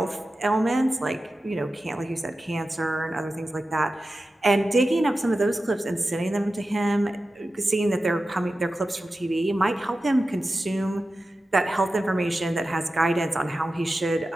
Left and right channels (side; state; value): both; normal; correlation 0.93